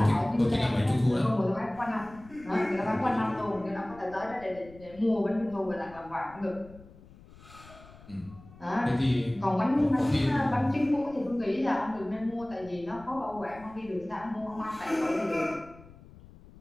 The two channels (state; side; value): noise; left; rumble, 21 dB below the sound